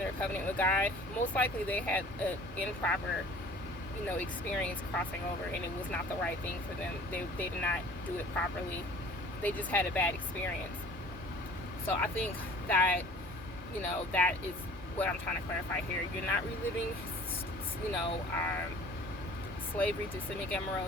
covenant with God, most likely they had an improper experience crossing over, and it was not the right thing for them. They did not do it properly. They just had a bad experience. So I think that, that is what I'm trying to clarify here. You're not reliving, slavery to San Miguel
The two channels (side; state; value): both; normal; correlation 0.48